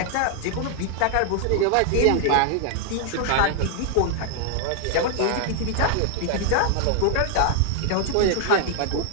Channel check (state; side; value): different; both; correlation 0.00